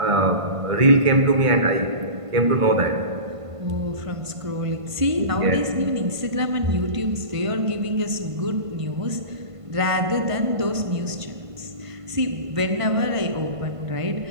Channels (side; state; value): left; late; 1.5 ms